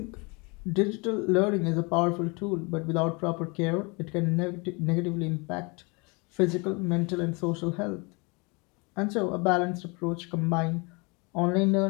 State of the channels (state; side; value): quieter; right; 29.5 dB